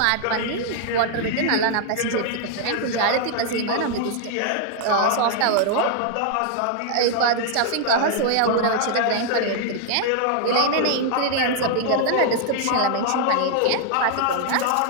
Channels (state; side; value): different; both; correlation 0.00